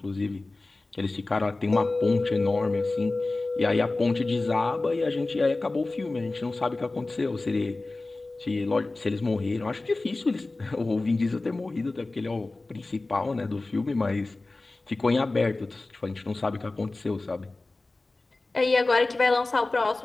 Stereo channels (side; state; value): right; quieter; 3.2 dB